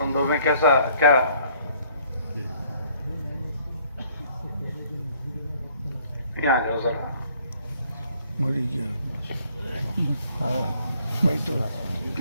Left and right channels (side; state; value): both; inverted; correlation -0.61